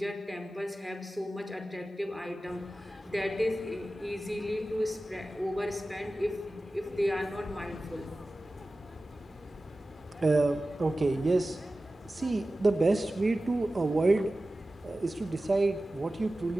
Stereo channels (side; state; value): both; normal; correlation 0.95